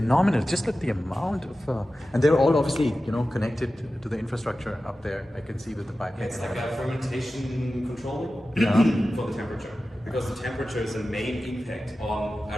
Just look the amount of, and they're all obviously, you know, connected to the infrastructure up there. I can see with the pipe. It's like a fermentation control for the temperature, because the temperature is a main impact on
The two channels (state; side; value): normal; both; correlation 0.94